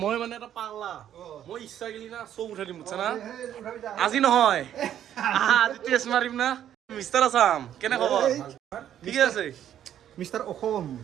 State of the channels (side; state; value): left; quieter; 10.6 dB